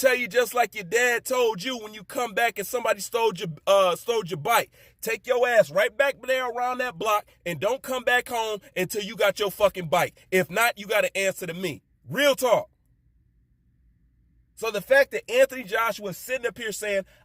tell you just like your dad told you when you come back and somebody stole your bike. Take your ass right back there around that block and don't come back home until you got your fucking bike. If not, you got to answer to me. Real talk. So the fact that Anthony Joshua is sitting up here saying,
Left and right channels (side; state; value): both; identical; correlation 1.00